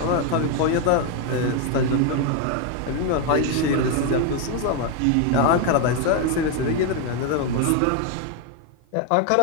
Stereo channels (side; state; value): both; different; correlation 0.01